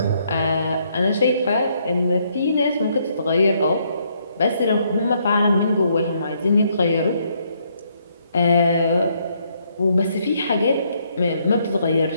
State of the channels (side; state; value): both; inverted; correlation -0.72